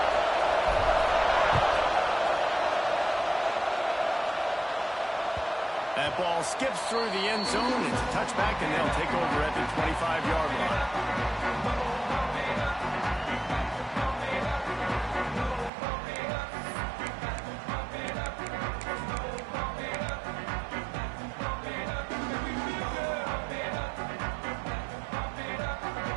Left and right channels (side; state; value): left; drops out; at 15.7 s